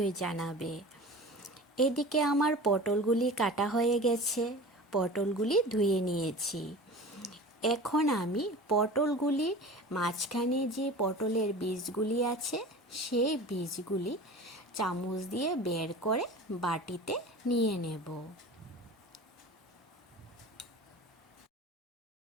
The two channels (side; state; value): both; normal; correlation 0.37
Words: জানাবে। এদিকে আমার পটলগুলি কাটা হয়ে গেছে, পটলগুলি ধুয়ে নিয়েছি। এখন আমি পটলগুলি মাঝখানে যে পটলের বীজগুলি আছে সেই বীজগুলি চামচ দিয়ে বের করে বাটিতে নিয়ে নেব।